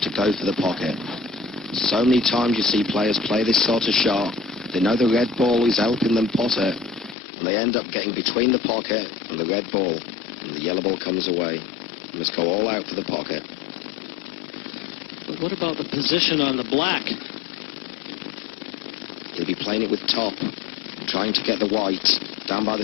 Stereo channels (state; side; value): drops out; right; at 7.2 s